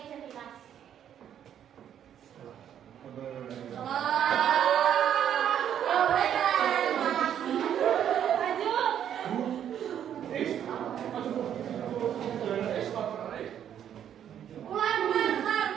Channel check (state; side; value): quieter; left; 9.7 dB